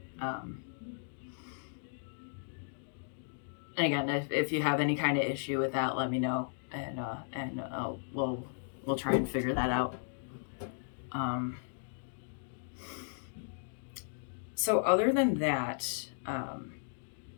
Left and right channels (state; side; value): silent; right; digital silence